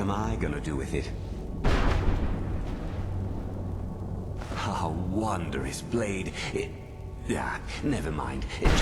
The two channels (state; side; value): identical; both; correlation 1.00